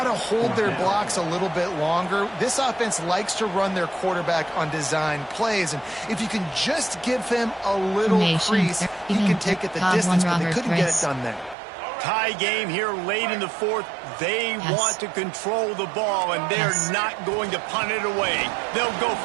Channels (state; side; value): drops out; left; at 11.6 s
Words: to hold their blocks a little bit longer. This offense likes to run their quarterback on design plays, and if you can just give him a little crease, he can take it the distance, but they couldn't get it done there. Tie game here late in the 4th. They want to control the ball, and they're not going to punt it away. They'll go